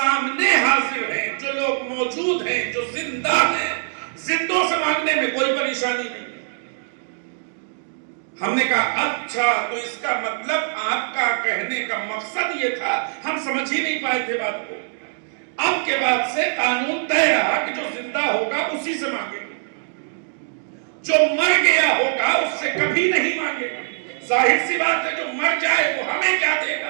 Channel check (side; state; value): left; silent; digital silence